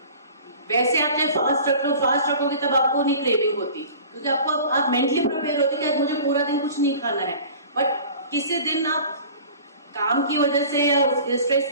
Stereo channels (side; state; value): both; inverted; correlation -0.43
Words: वैसे आप चाहे फास्ट रखोगे तब आपको नहीं क्रेविंग होती, क्योंकि आप मेंटली प्रिपेयर होते कि आज मुझे पूरा दिन कुछ नहीं खाना है। बट किसी दिन आप काम की वजह से या स्ट्रेस